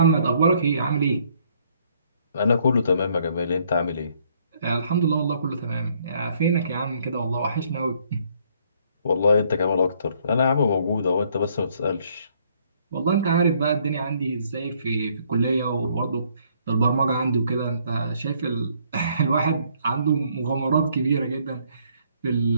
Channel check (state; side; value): inverted; both; correlation -0.66